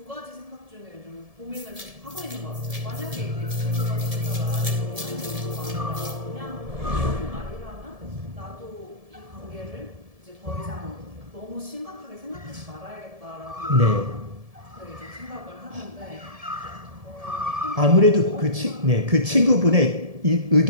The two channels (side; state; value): left; late; 1.7 ms